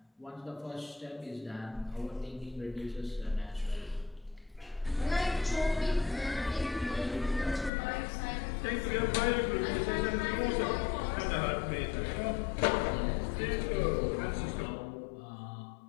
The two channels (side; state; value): right; drops out; at 7.7 s